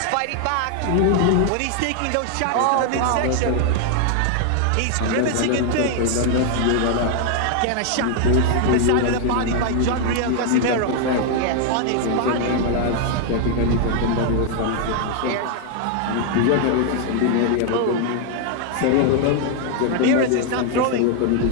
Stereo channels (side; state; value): both; different; correlation 0.00